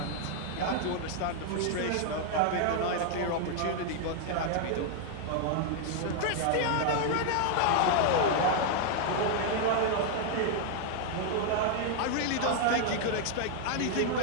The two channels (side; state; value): both; different; correlation 0.00